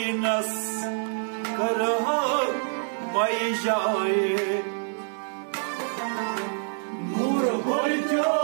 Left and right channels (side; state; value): left; silent; digital silence